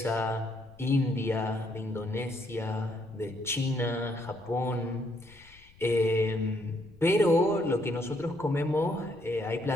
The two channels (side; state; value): left; noise; rumble, 26 dB below the sound